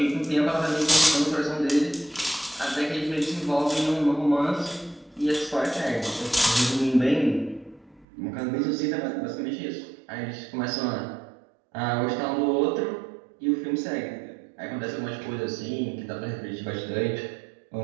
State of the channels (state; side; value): drops out; left; at 8.1 s